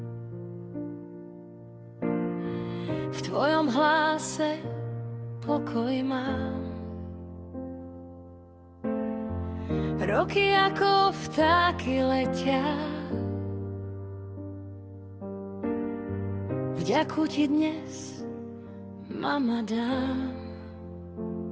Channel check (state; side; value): identical; both; correlation 1.00